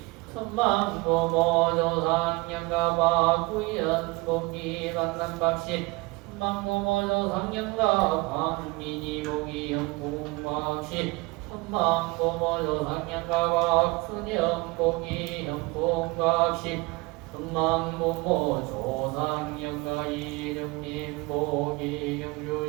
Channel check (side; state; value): left; quieter; 24.8 dB